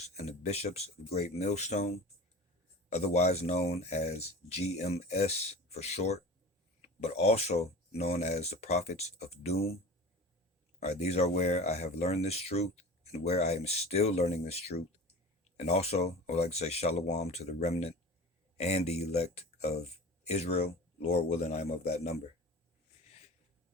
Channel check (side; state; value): both; normal; correlation 0.35